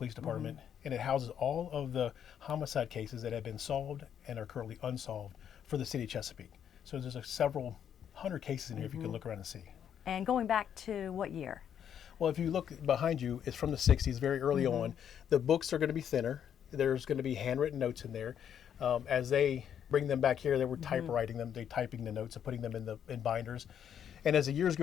Department, and it houses all of the homicide cases that have been solved and are currently unsolved for the City of Chesapeake. So there's several hundred cases in here if you can look around and see. And going back to what year? Well, if you look behind you, it's from the 60s, very early on. The books are going to be thinner. There's going to be handwritten notes in there. As they bring them back here, they were typewriting them, they typing the notes and putting them in binders. And as the years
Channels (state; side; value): quieter; right; 8.9 dB